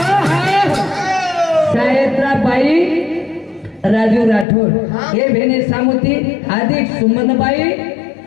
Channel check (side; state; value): right; drops out; at 4.5 s